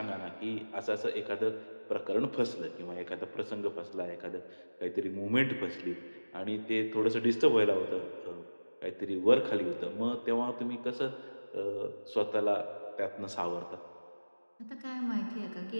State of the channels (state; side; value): inverted; both; correlation -1.00